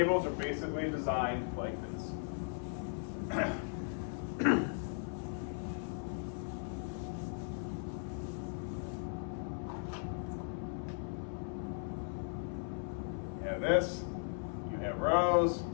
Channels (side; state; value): right; silent; 53 dB below the other